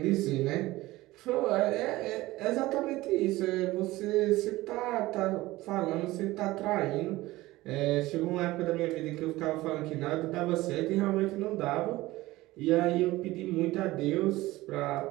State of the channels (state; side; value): quieter; left; 18.4 dB